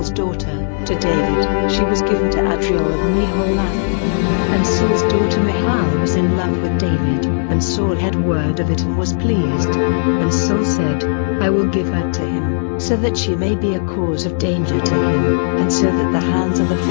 daughter, to David, she was given to Adriel of Meholath. And Saul's daughter Michal was in love with David, and Saul had word of it and was pleased. And Saul said, I will give her to him, so that she may be a cause of danger to him, and so that the hands of the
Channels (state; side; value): silent; right; 68 dB below the other